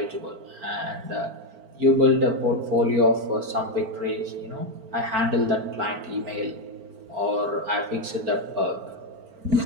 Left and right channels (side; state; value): left; late; 4.4 ms